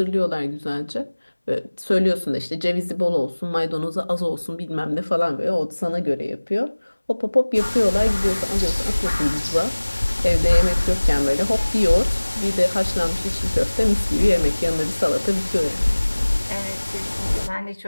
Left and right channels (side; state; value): both; inverted; correlation -1.00